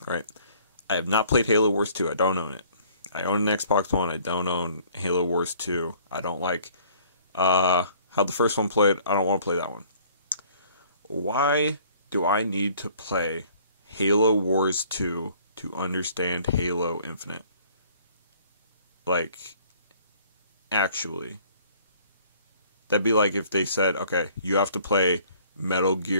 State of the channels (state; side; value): inverted; both; correlation -0.56